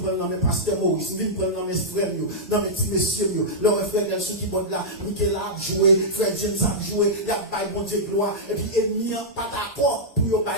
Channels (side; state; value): both; normal; correlation -0.11